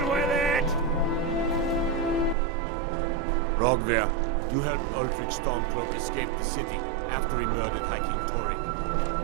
with it! Rogver, you helped Ulfric Stormcloak escape the city after he murdered High King Torrik.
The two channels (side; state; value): left; drops out; at 2.4 s